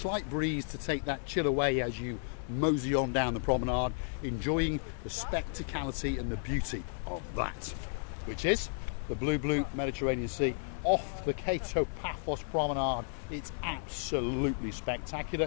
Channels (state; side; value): silent; right; 56 dB below the other